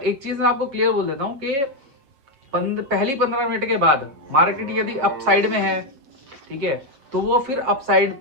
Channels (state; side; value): late; left; 7.2 ms